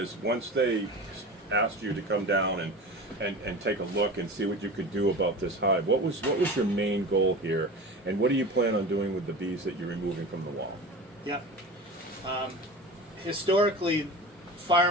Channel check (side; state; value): both; normal; correlation 0.32